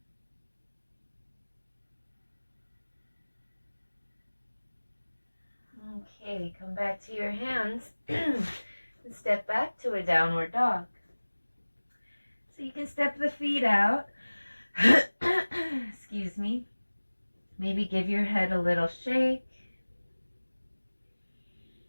Okay, come back to your hands and step back to a downward dog. So you can step the feet out. Excuse me. Maybe give your head a little shake.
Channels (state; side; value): inverted; both; correlation -1.00